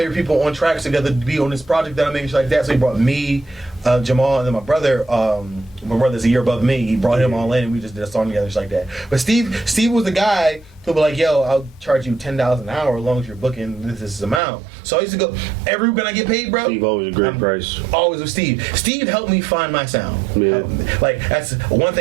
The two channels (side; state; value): left; drops out; at 14.4 s